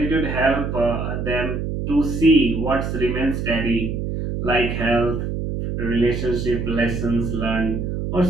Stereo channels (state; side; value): noise; right; hum, 3 dB below the sound